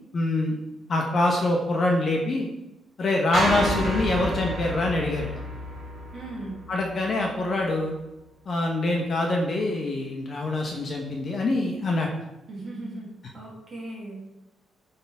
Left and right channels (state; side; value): normal; both; correlation 0.80